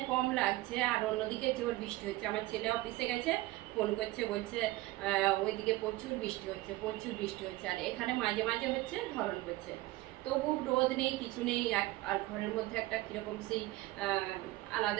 কম লাগছে আর অন্যদিকে জোর বৃষ্টি হচ্ছে। আমার ছেলে অফিসে গেছে, ফোন করছে, বলছে ওইদিকে প্রচুর বৃষ্টি হচ্ছে, প্রচুর বৃষ্টি হচ্ছে, আর এখানে মাঝে মাঝে হচ্ছে, ধরন করছে। তবু রোদ নেই, কিছু নেই, আর ঘরের মধ্যে একটা কীরকম সেই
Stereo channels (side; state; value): left; quieter; 18.5 dB